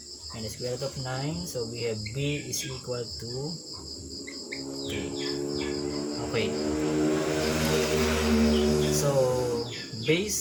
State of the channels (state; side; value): identical; both; correlation 1.00